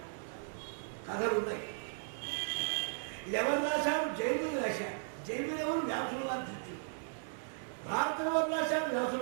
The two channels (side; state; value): left; silent; 54 dB below the other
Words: కథలున్నాయి. ఎవరు రాశారు? జైమిని రాశారు. జైమిని ఎవరు? వ్యాసులు వారు శిష్యులు. భారతం ఎవరు రాశారు?